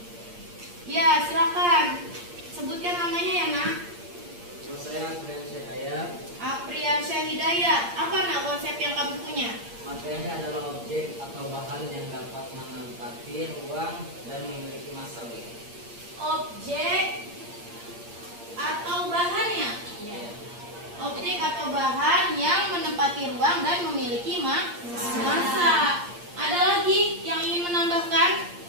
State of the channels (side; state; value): left; late; 8.6 ms